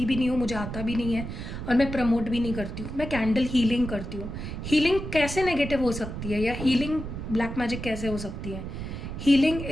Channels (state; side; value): noise; right; rumble, 7 dB below the sound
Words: भी नहीं हूँ, मुझे आता भी नहीं है, और मैं प्रमोट भी नहीं करती हूँ। मैं कैंडल हीलिंग करती हूँ। हीलिंग कैसे नेगेटिव हो सकती है, या हीलिंग ब्लैक मैजिक कैसे हो सकती है? Healing